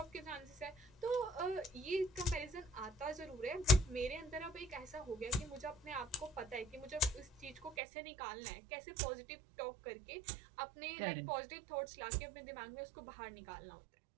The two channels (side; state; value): left; drops out; at 7.8 s